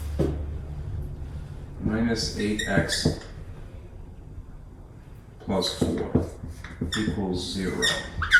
minus 8x plus 4 equals 0.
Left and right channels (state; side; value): identical; both; correlation 1.00